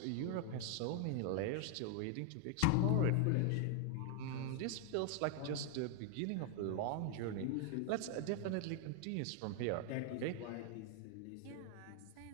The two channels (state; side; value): different; both; correlation 0.00